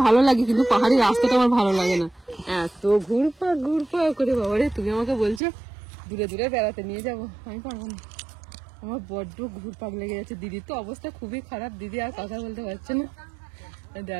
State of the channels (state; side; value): drops out; left; at 5.4 s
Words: ভালো লাগে কিন্তু পাহাড়ি রাস্তাটা আমার ভালো লাগে না, এত ঘুরপাক ঘুরপাক করে। বাবা রে তুমি আমাকে বলছো দূরে দূরে বেড়াতে নিয়ে যাবো, আমি পারবো না, আমার বড্ড ঘুরপাক লেগে যাচ্ছে। দিদির তো অবস্থা খুবই খারাপ, দিদি আর কথা বলতে পারছে না,